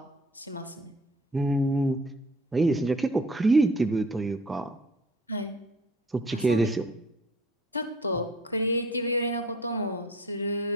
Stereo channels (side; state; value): both; normal; correlation 0.50